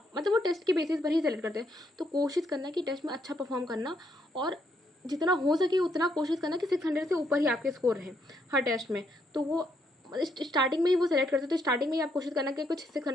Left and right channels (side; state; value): both; normal; correlation 0.74